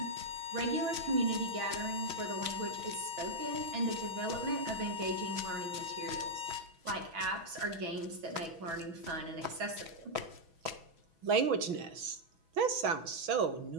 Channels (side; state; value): left; late; 6.1 ms